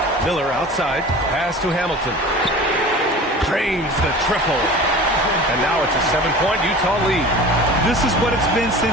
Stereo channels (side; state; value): both; normal; correlation 0.38